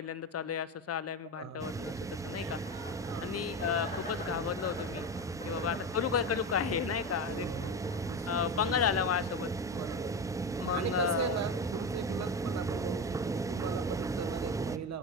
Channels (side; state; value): both; normal; correlation 0.21